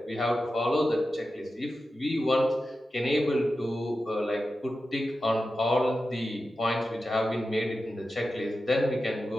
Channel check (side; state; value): both; normal; correlation 0.92